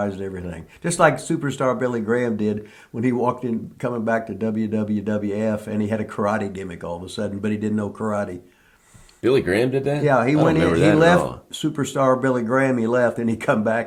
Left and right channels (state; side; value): identical; both; correlation 1.00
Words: everything. Just like superstar Billy Graham did when he walked in coming back to WWF and he had a karate gimmick all of a sudden, but he didn't know karate. Billy Graham did that? Yeah, he went in. remember He that left at all. superstar Billy Graham. He left, and he come